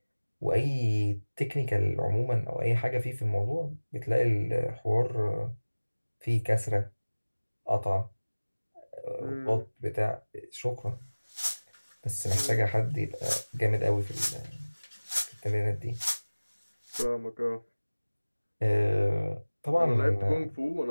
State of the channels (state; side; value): inverted; both; correlation -1.00